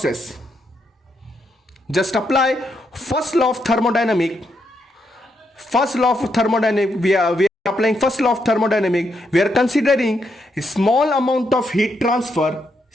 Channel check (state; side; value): normal; both; correlation 0.79